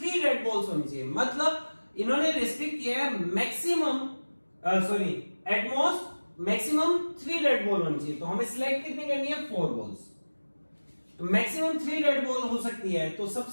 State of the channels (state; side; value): inverted; both; correlation -1.00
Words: red balls होनी चाहिए। मतलब इन्होंने रिस्ट्रिक्ट किया है maximum at most maximum 3 red ball होनी चाहिए। तो हमें सिलेक्ट कितनी करनी है, 4 बॉल्स। तो मैक्सिमम 3 रेड बॉल हो सकती है। तो